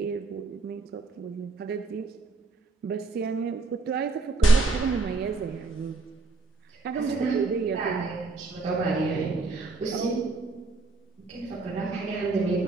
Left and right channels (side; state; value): left; quieter; 3.8 dB